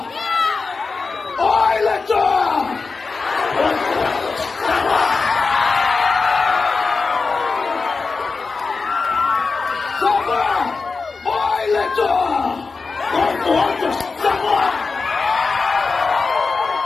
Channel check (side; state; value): right; quieter; 4.4 dB